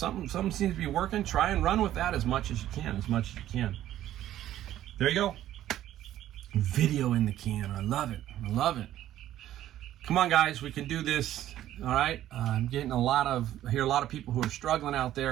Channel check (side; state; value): left; quieter; 12.8 dB